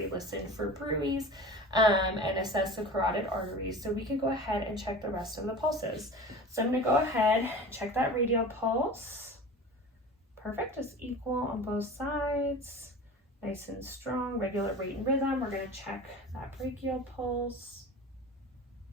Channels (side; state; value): both; normal; correlation 0.36